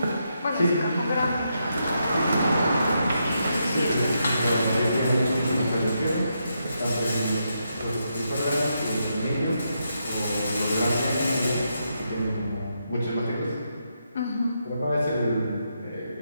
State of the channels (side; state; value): both; inverted; correlation -0.82